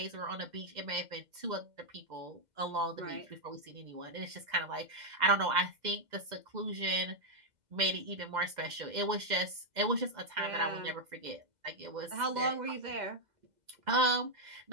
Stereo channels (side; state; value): left; late; 2.0 ms